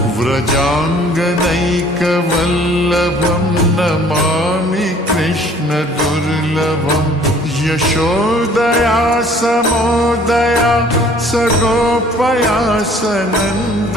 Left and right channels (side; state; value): both; normal; correlation 0.54